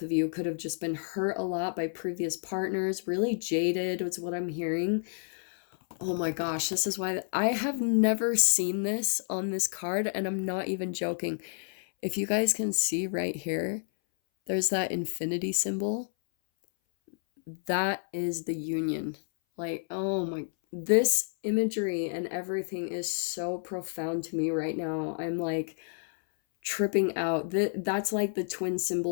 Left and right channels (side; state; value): right; silent; 58 dB below the other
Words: of you, could have just been hurt a lot by previous partners. Really jaded was what I'm hearing. Oh my gosh, this is why I have never seen this on this card, and I'm not even joking. If you guys can see right here, there's that infinity symbol. That is the union. Like, oh my, this imagery and everything is so profound to me right now. I'm like tripping out. That's like the twin